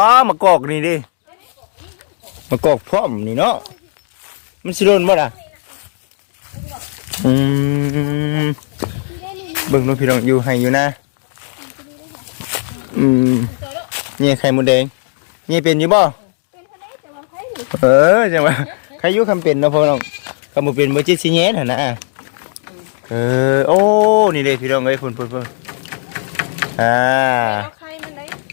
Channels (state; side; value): silent; right; digital silence